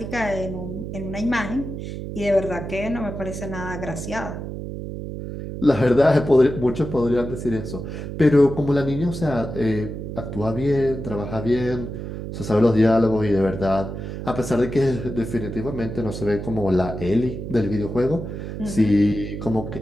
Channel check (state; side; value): noise; right; hum, 7 dB below the sound